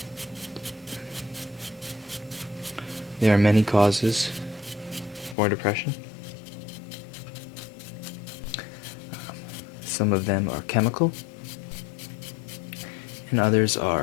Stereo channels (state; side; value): drops out; right; at 5.4 s